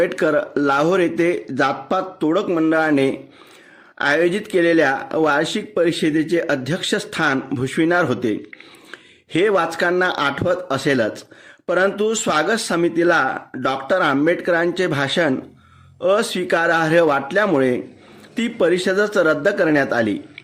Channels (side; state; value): both; identical; correlation 1.00